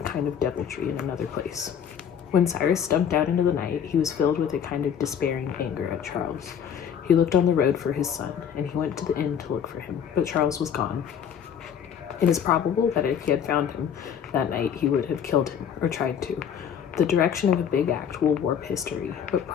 kind of deviltry in another place. When Cyrus stumped out into the night, he was filled with a kind of despairing anger at Charles. He looked on the road for his son, and he went to the inn to look for him, but Charles was gone. It is probable that if he had found him that night, he would have killed him, or tried to. The direction of a big act will warp history, but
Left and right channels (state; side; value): quieter; right; 8.2 dB